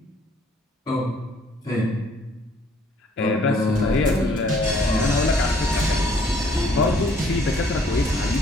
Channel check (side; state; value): both; normal; correlation 0.62